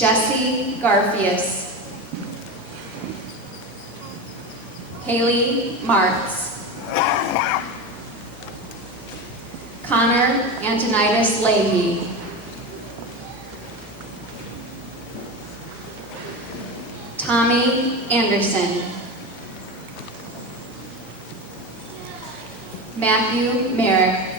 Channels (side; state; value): both; normal; correlation 0.23